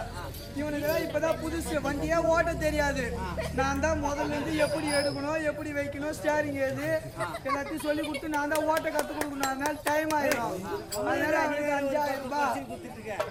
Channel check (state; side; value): identical; both; correlation 1.00